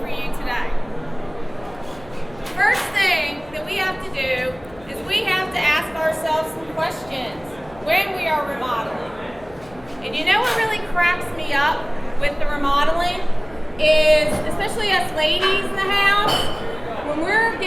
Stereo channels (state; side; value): noise; left; hum, 23 dB below the sound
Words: you today. First thing that we have to do is we have to ask ourselves some questions when we are remodeling. And you know what really cracks me up with the remodeling is, especially us ladies in the house, when we're